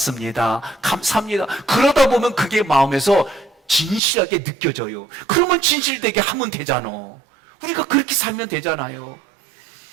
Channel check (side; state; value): left; drops out; at 4.0 s